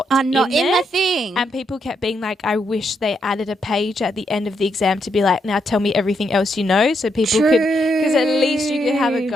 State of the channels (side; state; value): both; normal; correlation 0.79